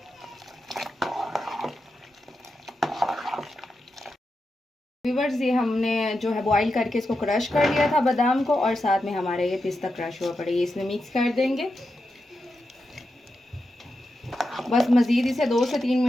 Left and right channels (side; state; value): both; normal; correlation 0.88